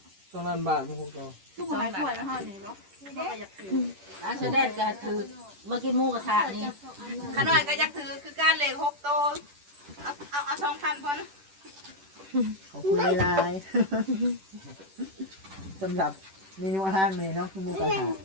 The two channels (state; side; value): late; left; 10 ms